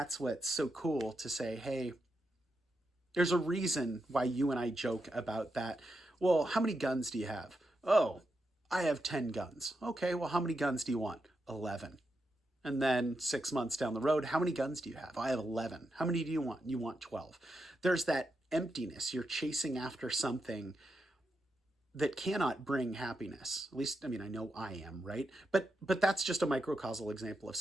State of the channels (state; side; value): normal; both; correlation 0.85